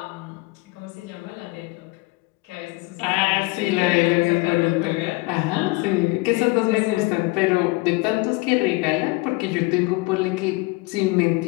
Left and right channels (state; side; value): quieter; right; 23.6 dB